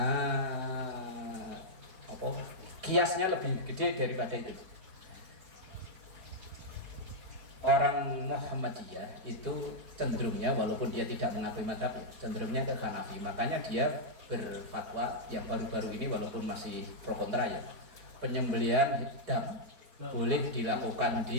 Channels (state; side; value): late; left; 4.4 ms